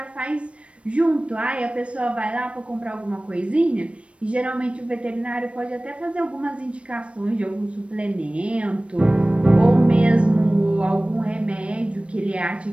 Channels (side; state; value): left; late; 0.061 ms